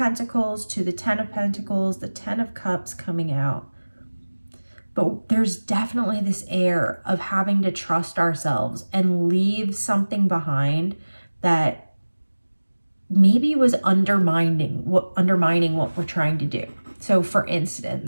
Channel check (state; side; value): inverted; both; correlation -1.00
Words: to the Ten of Pentacles, the Ten of Cups coming out. But there's definitely this air of having to trust ourselves and leave something behind that maybe was undermining what we're trying to do. So for